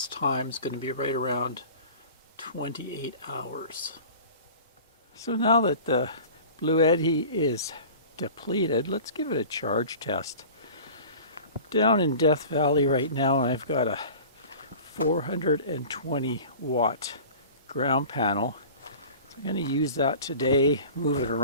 time is going to be right around 28 hours. So now that the Bluetti is depleted, let's give it a charge test. Down in Death Valley right now, I've got a 420 watt ground panel. So I'm going to use that today, move it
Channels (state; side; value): inverted; both; correlation -0.41